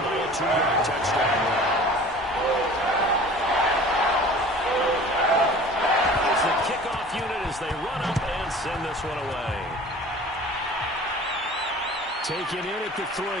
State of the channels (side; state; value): both; normal; correlation 0.43